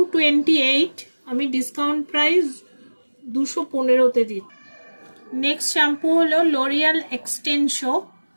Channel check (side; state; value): both; inverted; correlation -1.00